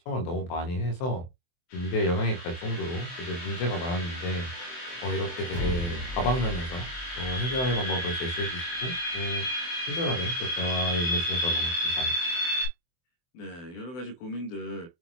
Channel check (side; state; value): right; late; 24 ms